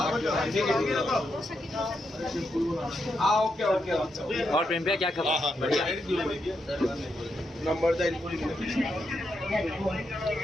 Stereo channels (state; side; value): normal; both; correlation 0.83